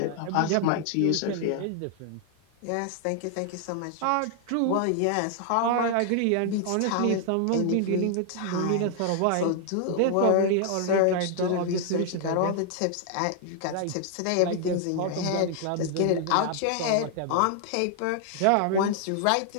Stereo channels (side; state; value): both; different; correlation 0.00